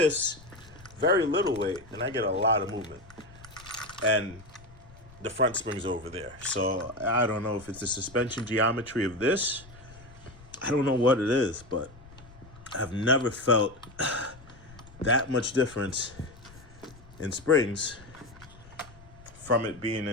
very little weight, and I get a lot of movement. And the front spring's over there. So I don't know if it's the suspension geometry of this. I don't know what it is, but I've never felt that much difference in springs from it being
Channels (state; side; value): noise; left; rumble, 21 dB below the sound